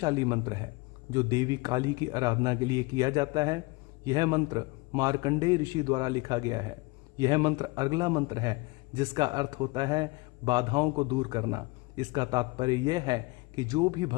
मंत्र है जो देवी काली की आराधना के लिए किया जाता है। यह मंत्र मार्कंडेय ऋषि द्वारा लिखा गया है। यह मंत्र अगला मंत्र है जिसका अर्थ होता है बाधाओं को दूर करना। इसका तात्पर्य यह है कि जो भी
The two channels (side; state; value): right; quieter; 24.3 dB